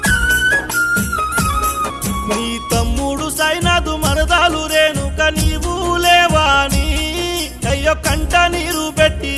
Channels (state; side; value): identical; both; correlation 1.00